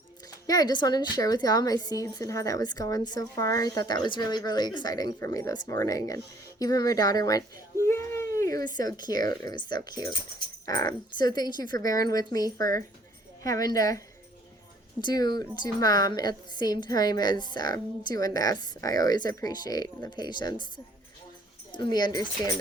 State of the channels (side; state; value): both; normal; correlation 0.59